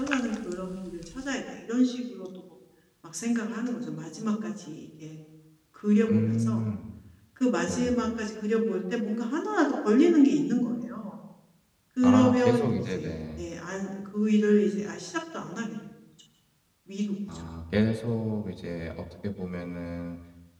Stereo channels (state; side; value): identical; both; correlation 1.00